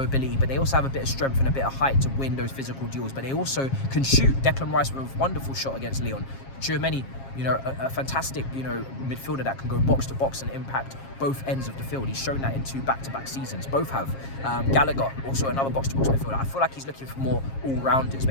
but they also have a bit of strength and a bit of height to win those physical duels, but they also can shoot. Declan Rice with a wonderful shot against Lyon. Tchouaméni, you know, a fantastic, you know, midfielder that can go box to box and impact both ends of the field. He's shown that in 2 back-to-back seasons. Both have. Gallagher, also another box-to-box midfielder. I feel like he's looking for more all-rounders,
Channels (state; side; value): late; right; 7.4 ms